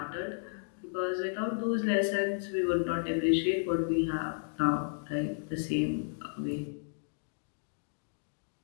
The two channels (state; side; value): silent; right; digital silence